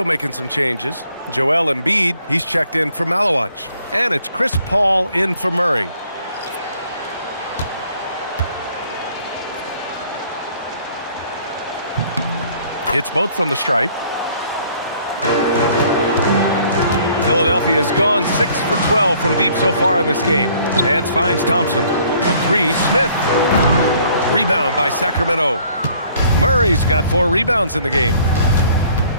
making some changes. Joel Embiid, he's checked in for Malawach. And it's Chris Paul in for Murray. Hits both from the stripe. Philadelphia has gone 6 for 12 from deep so far in this game. Nance finds Thompson. The 3, Smith. Rebound by Sacramento. Murray's got 4 rebounds in the game.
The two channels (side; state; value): both; inverted; correlation -0.60